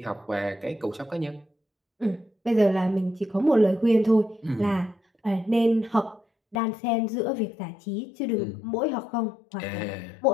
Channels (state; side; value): drops out; right; at 6.6 s